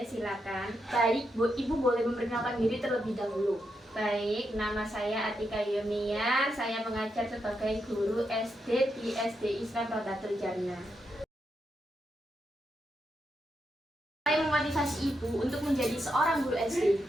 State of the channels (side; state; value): both; normal; correlation 0.83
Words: silakan. Baik, Ibu boleh memperkenalkan diri terlebih dahulu. Baik, nama saya Atika Yuniar. Saya mengajar sebagai guru SD di SD Islam Rodatul Jannah. Saya memotivasi Ibu untuk menjadi seorang guru SD.